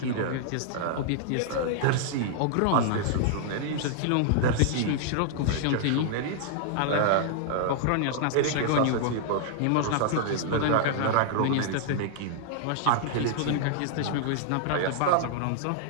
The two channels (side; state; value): both; different; correlation -0.01